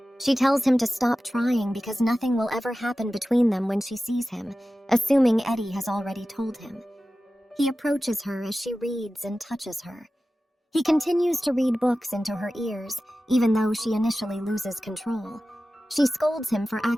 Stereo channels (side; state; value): both; normal; correlation 0.95